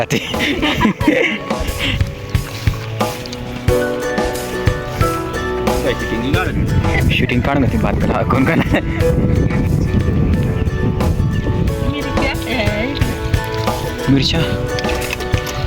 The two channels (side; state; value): both; identical; correlation 1.00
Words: शूटिंग काढ ना ती बात करा कोण का मिरच्या